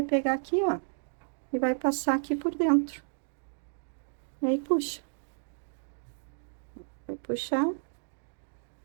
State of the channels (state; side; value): silent; left; digital silence